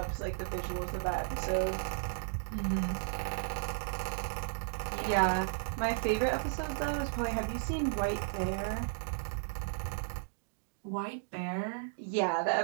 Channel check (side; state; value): left; silent; digital silence